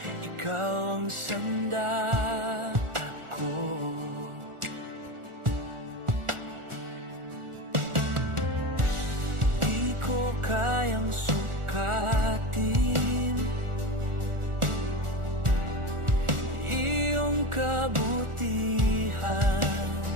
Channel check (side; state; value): left; late; 1.4 ms